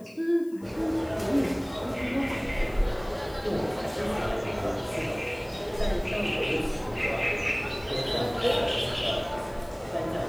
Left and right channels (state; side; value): noise; left; hiss, 26 dB below the sound